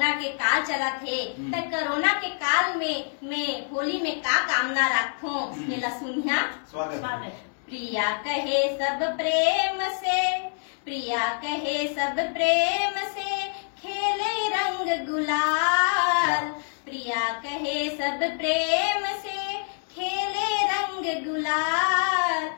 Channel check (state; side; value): silent; right; 61 dB below the other